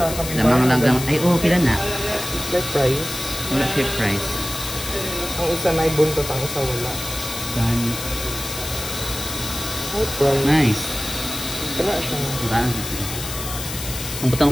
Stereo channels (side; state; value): left; noise; hiss, 7 dB below the sound